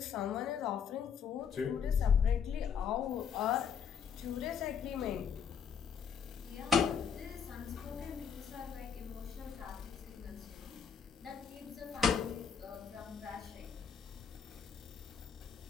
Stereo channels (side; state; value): right; quieter; 7.1 dB